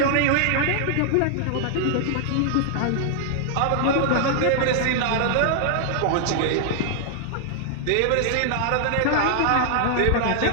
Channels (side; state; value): both; different; correlation 0.00